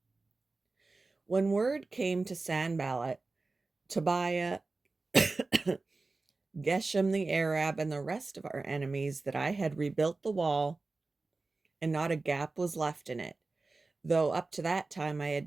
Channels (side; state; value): left; quieter; 3.6 dB